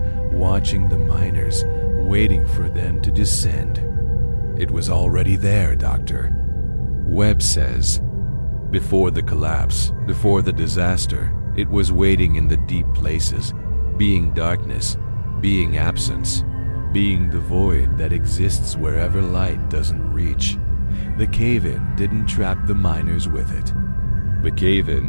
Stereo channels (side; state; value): both; inverted; correlation -1.00